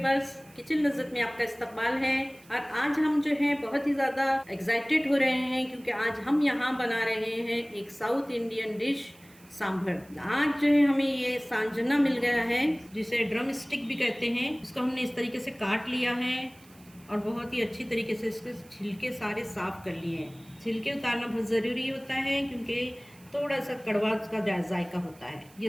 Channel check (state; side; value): noise; right; hiss, 26 dB below the sound